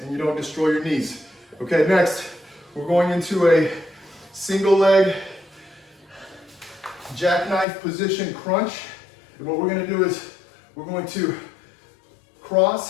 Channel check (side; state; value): right; drops out; at 7.7 s